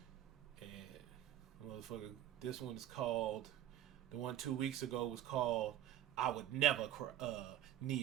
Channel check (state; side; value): quieter; left; 11.9 dB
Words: And motherfucker, this one is called, the one 2 weeks ago was called I Would Never